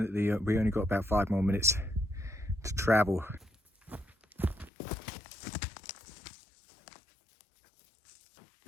we only got about 5 more minutes to travel.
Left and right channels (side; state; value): right; drops out; at 4.7 s